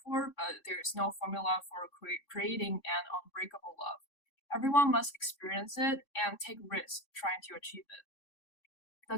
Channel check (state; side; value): late; right; 3.6 ms